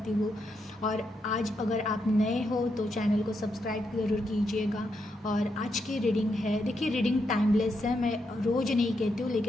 हूँ। और आज अगर आप नए हो तो चैनल को सब्सक्राइब ज़रूर कीजिएगा। और आज की रीडिंग है, देखिए रीडिंग टाइमलेस है, मैं रोज़ नहीं कहती हूँ,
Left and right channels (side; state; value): both; normal; correlation 0.81